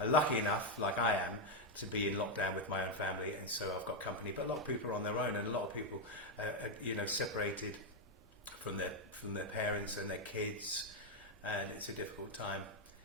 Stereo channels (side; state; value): both; normal; correlation 0.02